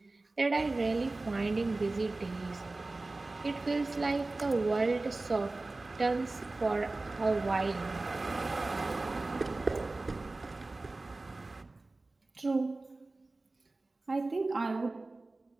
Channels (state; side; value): quieter; left; 3.2 dB